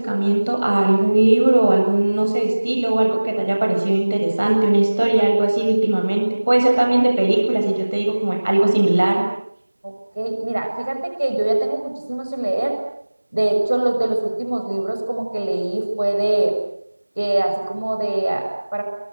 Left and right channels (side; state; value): both; inverted; correlation -1.00